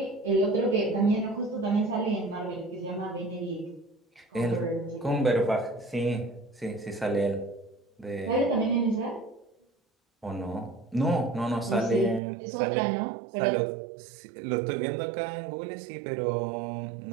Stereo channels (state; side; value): drops out; left; at 12.2 s